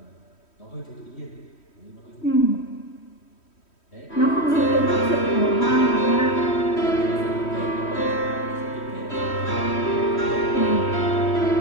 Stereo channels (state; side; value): late; right; 3.1 ms